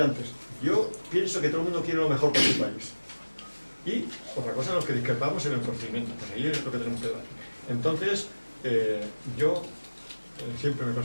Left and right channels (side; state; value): both; inverted; correlation -1.00